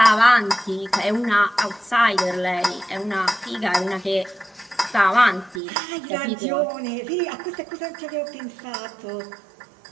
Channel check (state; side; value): drops out; left; at 5.6 s